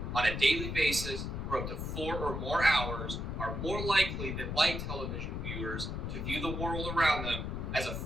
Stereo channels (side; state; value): left; noise; rumble, 4 dB below the sound